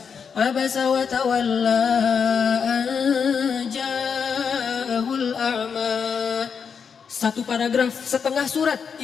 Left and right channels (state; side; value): quieter; right; 6.4 dB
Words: Abasa wa tawalla ja'ahul a'ma. Satu paragraf, setengah surat